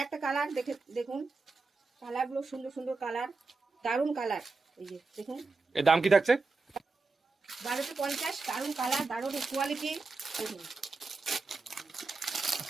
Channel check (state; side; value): quieter; left; 3.9 dB